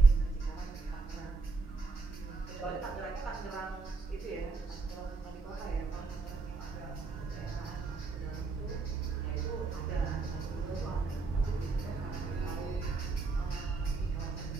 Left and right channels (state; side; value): quieter; left; 4.1 dB